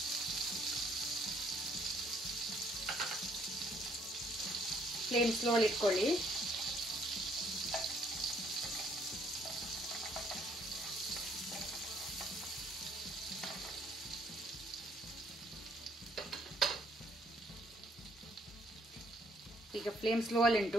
ಫ್ಲೇಮ್ ಸ್ಲೋಲಿ ಇಟ್ಕೊಳ್ಳಿ. ಈಗ ಫ್ಲೇಮ್ ಸ್ಲೋ ಅಲ್ಲಿ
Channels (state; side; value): normal; both; correlation 0.65